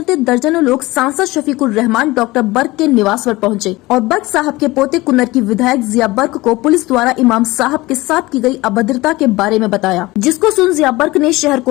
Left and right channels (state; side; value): quieter; right; 20.2 dB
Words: दर्जनों लोग सांसद शफीकुर रहमान डॉक्टर बर्क के निवास पर पहुँचे और बर्क साहब के पोते कुन्नर की विधायक जिया बर्क को पुलिस द्वारा इमाम साहब के साथ की गयी अभद्रता के बारे में बताया, जिसको सुन जिया बर्क ने शहर